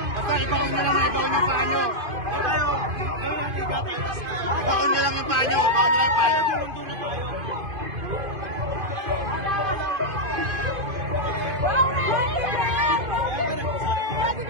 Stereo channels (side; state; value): left; late; 2.5 ms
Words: Basta ibaon nyo lang yung paa nyo. Ibaon nyo lang yung paa nyo.